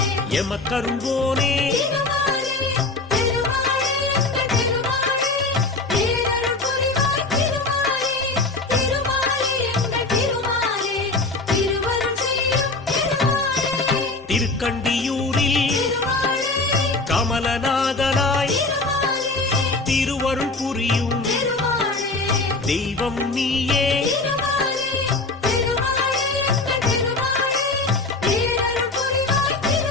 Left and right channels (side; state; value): right; quieter; 3.4 dB